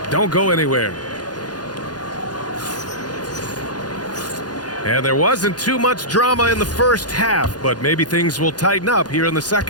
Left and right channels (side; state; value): right; late; 0.69 ms